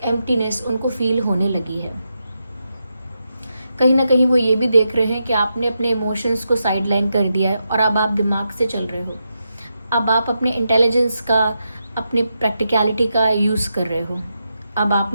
एम्प्टीनेस उनको फील होने लगी है। कहीं ना कहीं वो ये भी देख रहे हैं कि आपने अपने इमोशंस को साइडलाइन कर दिया है, और अब आप दिमाग से चल रहे हो, अब आप अपने इंटेलिजेंस का, अपने प्रैक्टिकलिटी का यूज़ कर रहे हो, अब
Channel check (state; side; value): inverted; both; correlation -0.86